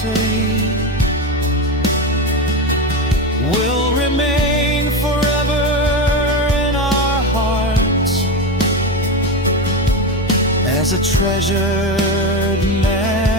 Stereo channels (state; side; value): normal; both; correlation 0.17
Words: will remain forever in our hearts as a treasured